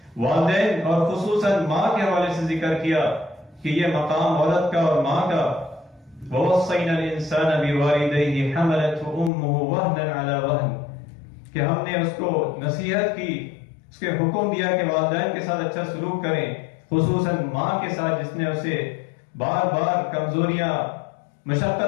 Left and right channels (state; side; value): drops out; right; at 9.3 s